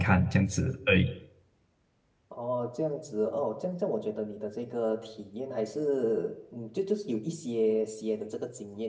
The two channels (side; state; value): both; identical; correlation 1.00